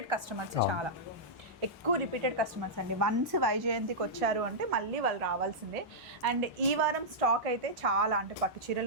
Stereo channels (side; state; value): both; normal; correlation -0.10